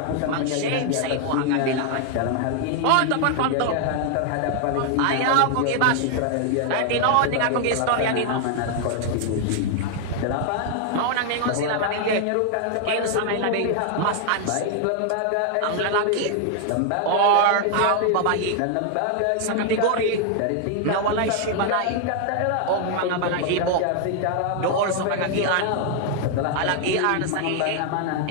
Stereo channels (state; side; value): different; both; correlation 0.00